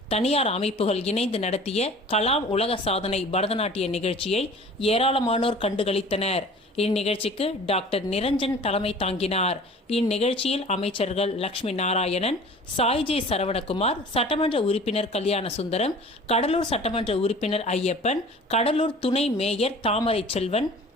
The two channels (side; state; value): both; normal; correlation 0.45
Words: தனியார் அமைப்புகள் இணைந்து நடத்திய கலாம் உலக சாதனை பரதநாட்டிய நிகழ்ச்சியை ஏராளமானோர் கண்டுகளித்தனர். இந்நிகழ்ச்சிக்கு டாக்டர் நிரஞ்சன் தலைமை தாங்கினார். இந்நிகழ்ச்சியில் அமைச்சர்கள் லட்சுமி நாராயணன், சாய்ஜே சரவணகுமார், சட்டமன்ற உறுப்பினர் கல்யாண சுந்தரம், கடலூர் சட்டமன்ற உறுப்பினர் ஐயப்பன், கடலூர் துணை மேயர் தாமரை செல்வன்,